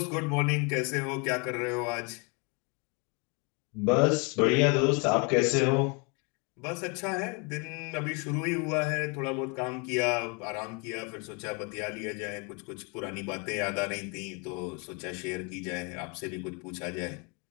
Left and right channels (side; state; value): right; quieter; 32.8 dB